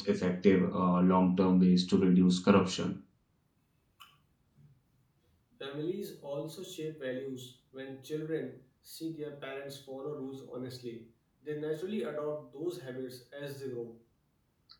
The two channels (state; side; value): identical; both; correlation 1.00